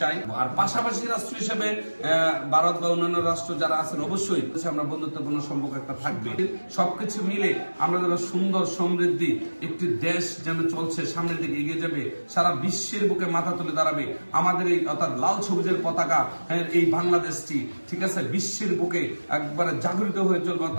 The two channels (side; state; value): both; inverted; correlation -1.00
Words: চাই। আর পাশাপাশি রাষ্ট্র হিসেবে ভারত বা অন্যান্য রাষ্ট্র যারা আছেন, অবশ্যই আমরা বন্ধুত্বপূর্ণ সম্পর্ক একটা থাকবে। সবকিছু মিলে আমরা যেন সুন্দর সমৃদ্ধি একটি দেশ যেন চলছে, সামনের দিকে এগিয়ে যাবে, সারা বিশ্বের বুকে মাথা তুলে দাঁড়াবে। আমাদের এই অর্থাৎ লাল সবুজের পতাকা, এই বাংলাদেশটি, ঠিক আছে, বিশ্বের বুকে একবারে জাগরিত হয়ে চলবে।